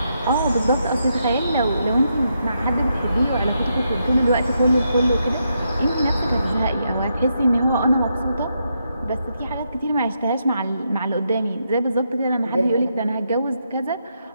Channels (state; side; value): inverted; both; correlation -0.81